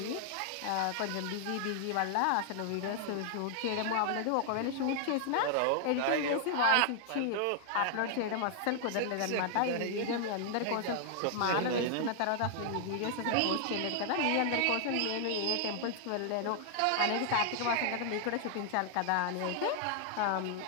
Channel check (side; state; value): both; different; correlation 0.00